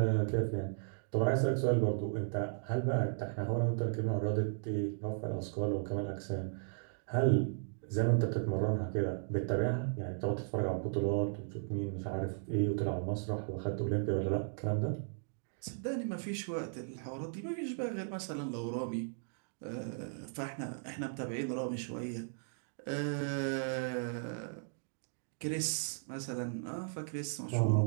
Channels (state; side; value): silent; left; digital silence